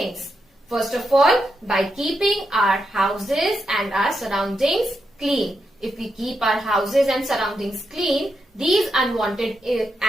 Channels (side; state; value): both; normal; correlation 0.84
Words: First of all, by keeping our houses and our surroundings clean. If we keep our houses and surroundings clean, these unwanted